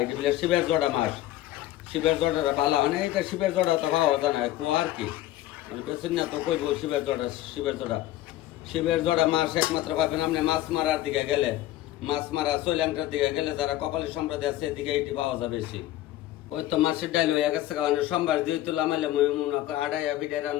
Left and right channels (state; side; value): quieter; right; 14.5 dB